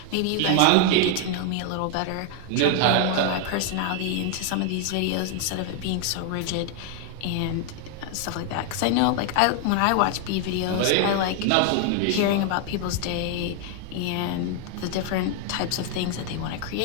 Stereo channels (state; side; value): different; both; correlation 0.00